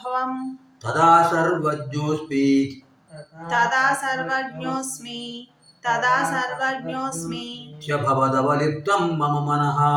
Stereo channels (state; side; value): identical; both; correlation 1.00